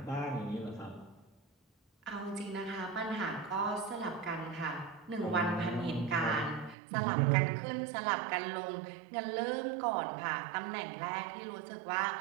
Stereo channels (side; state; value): left; drops out; at 6.8 s